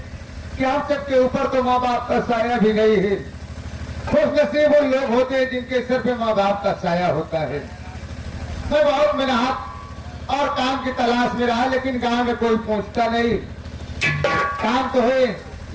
कि हम सबके ऊपर तो माँ बाप का साया भी नहीं है। खुश नसीब वो लोग होते हैं जिनके सिर पे माँ बाप का साया होता है। मैं बहुत मेहनत और काम की तलाश में रहा, लेकिन गांव में कोई पहुंचता नहीं। काम तो है,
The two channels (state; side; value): identical; both; correlation 1.00